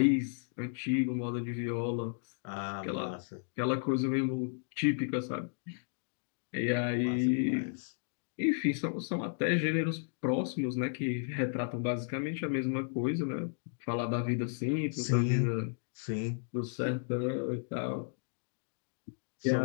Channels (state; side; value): silent; right; digital silence